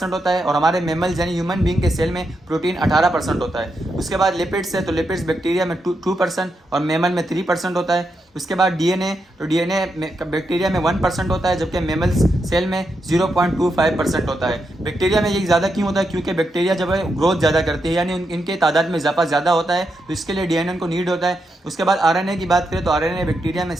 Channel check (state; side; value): normal; both; correlation 0.84